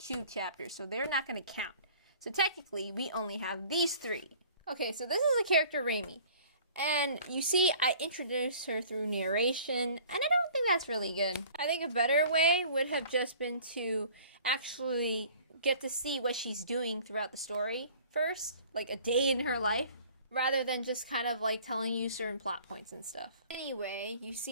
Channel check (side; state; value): both; inverted; correlation -0.50